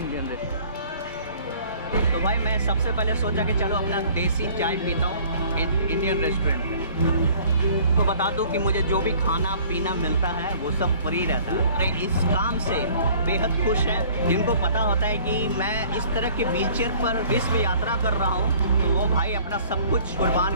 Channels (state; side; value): inverted; both; correlation -0.52